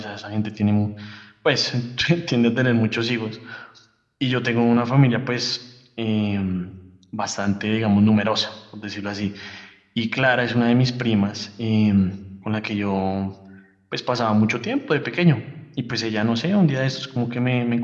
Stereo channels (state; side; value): identical; both; correlation 1.00